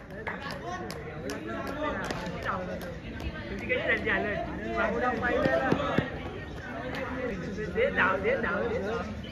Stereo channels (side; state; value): both; identical; correlation 1.00